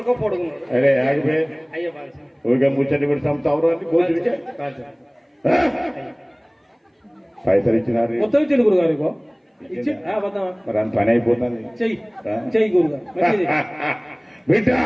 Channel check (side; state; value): both; identical; correlation 1.00